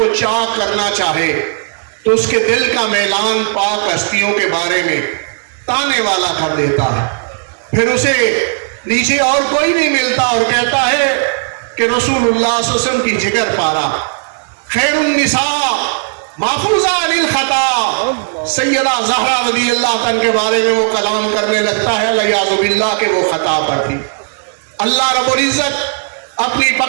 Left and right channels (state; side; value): silent; left; digital silence